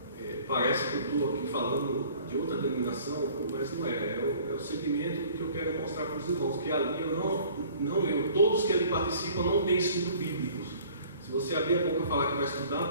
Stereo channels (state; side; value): inverted; both; correlation -0.51